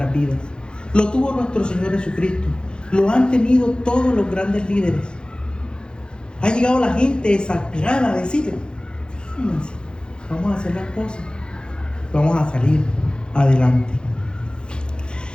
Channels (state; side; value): late; right; 0.049 ms